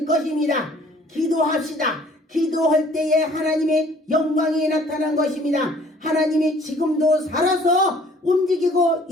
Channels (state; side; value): normal; both; correlation 0.56